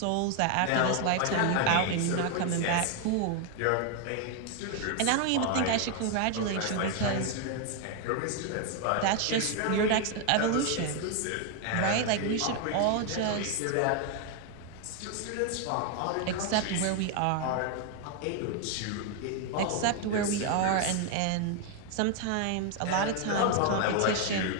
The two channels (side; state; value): both; different; correlation 0.01